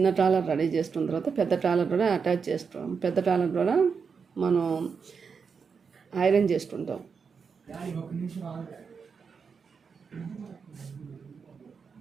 ట్రాలర్ రెడీ చేసుకున్న తర్వాత పెద్ద ట్రాలర్ కూడా అటాచ్ చేస్తాం. పెద్ద ట్రాలర్ కూడా మనం ఐరన్ చేసుకుంటాం.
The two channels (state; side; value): quieter; left; 5.8 dB